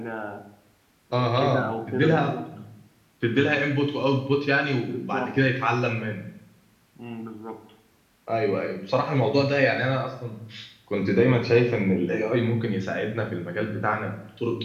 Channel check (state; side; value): identical; both; correlation 1.00